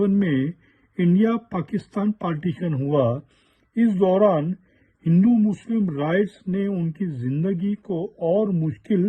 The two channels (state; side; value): identical; both; correlation 1.00